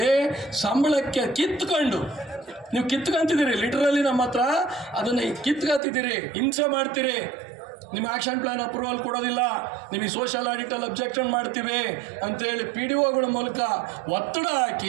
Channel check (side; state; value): left; drops out; at 5.8 s